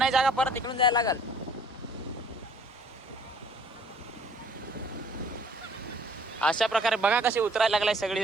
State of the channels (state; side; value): normal; both; correlation 0.56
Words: जागा, परत इकडून जायला लागल. अशा प्रकारे बघा कशी उतरायला लागलाय सगळी